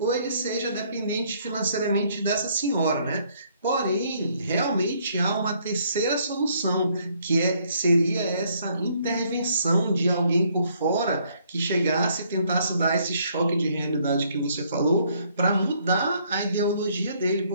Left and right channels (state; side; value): inverted; both; correlation -0.67